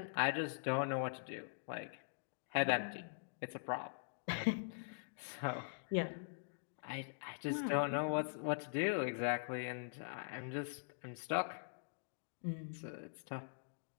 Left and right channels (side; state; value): right; silent; digital silence